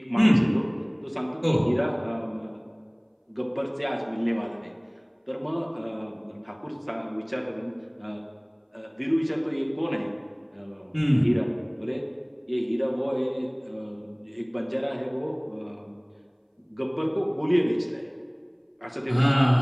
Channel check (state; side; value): identical; both; correlation 1.00